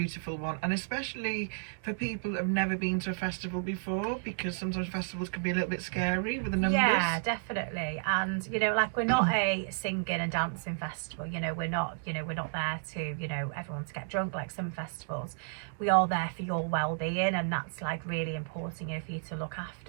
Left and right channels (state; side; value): silent; left; digital silence